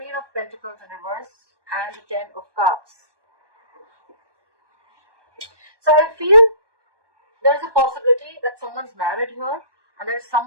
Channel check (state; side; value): late; left; 1.2 ms